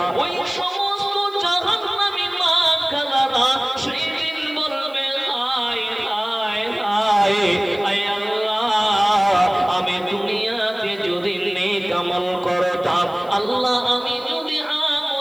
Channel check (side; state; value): left; noise; hiss, 28 dB below the sound